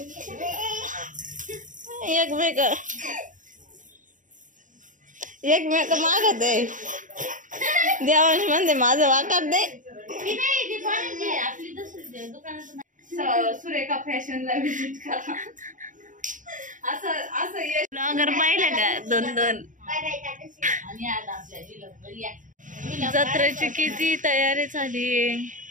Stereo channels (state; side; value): late; left; 0.37 ms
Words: एकमेक मागत आहे. देवांश म्हणते माझं वाकर दे. सुरेखा फॅशनला विजिट करा. असं ब्लॉगर पाहिलं का 2-2. जत्रेची किती तयारी झाली.